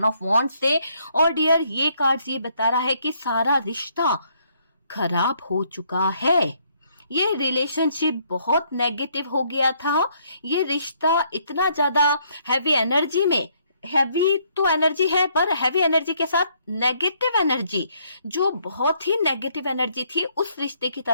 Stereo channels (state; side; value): inverted; both; correlation -0.69